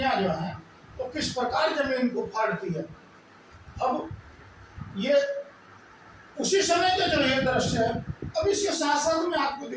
जो हैं तो किस प्रकार जमीन को फाड़ती है। अब ये उसी समय का जो ये दृश्य है। अब इसके साथ साथ मैं आपको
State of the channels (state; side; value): identical; both; correlation 1.00